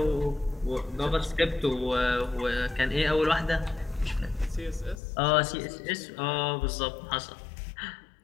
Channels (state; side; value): drops out; right; at 5.0 s